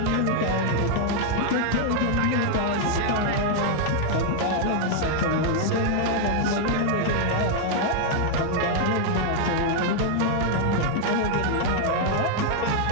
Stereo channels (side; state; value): both; different; correlation 0.00